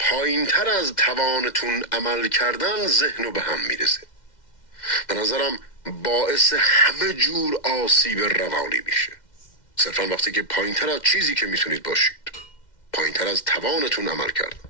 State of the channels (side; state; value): right; late; 2.1 ms